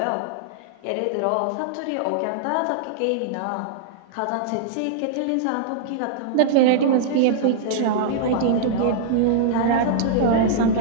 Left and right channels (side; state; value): both; different; correlation -0.02